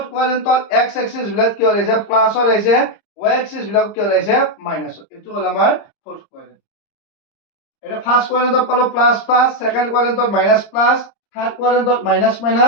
কোয়াড্রেন্টত x এক্সিস বিলাক কি হৈছে প্লাস হৈ আহিছে y এক্সিস বিলাক কি হৈছে মাইনাস এইটো হ'ল আমাৰ ফোর্থ কোয়াড্রেন্ট এটা ফার্স্ট কোয়াড্রেন্টত পালো প্লাস প্লাস সেকেন্ড কোয়াড্রেন্টত মাইনাস প্লাস থার্ড কোয়াড্রেন্টত মাইনাস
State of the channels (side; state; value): right; late; 30 ms